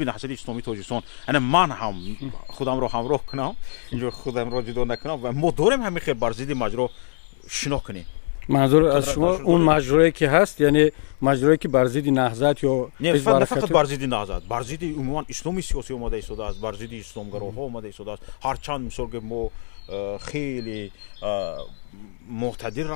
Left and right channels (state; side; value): silent; right; 63 dB below the other